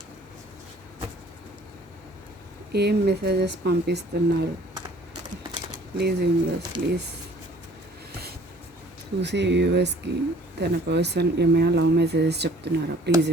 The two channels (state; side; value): normal; both; correlation 0.54